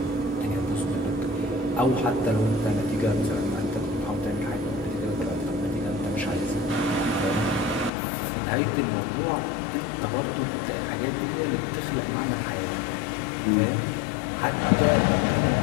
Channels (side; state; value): right; drops out; at 7.9 s